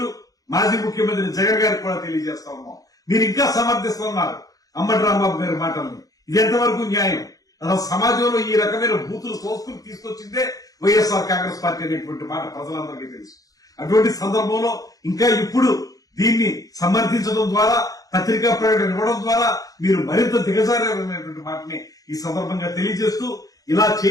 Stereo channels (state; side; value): late; right; 0.17 ms